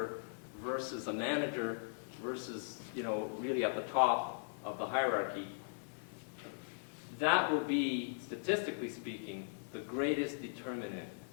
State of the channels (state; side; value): silent; right; 52 dB below the other